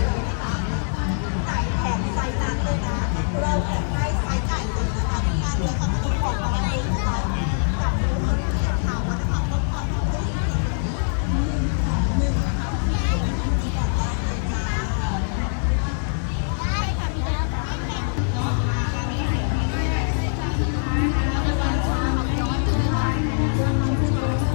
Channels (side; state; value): right; silent; digital silence